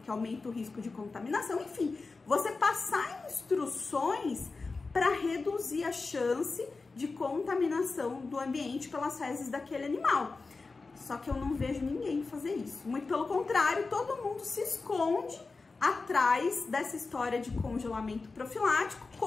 aumenta o risco de contaminação. Enfim, você passar instruções para reduzir a chance de contaminação do ambiente pelas fezes daquele animal. Só que eu não vejo ninguém fazer isso. Muito pelo contrário, todo mundo se esconde atrás dessa história de congelamento profilático,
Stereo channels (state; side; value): quieter; right; 4.0 dB